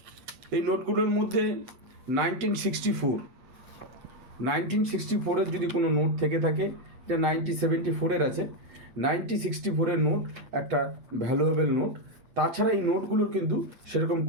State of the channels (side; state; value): left; late; 8.2 ms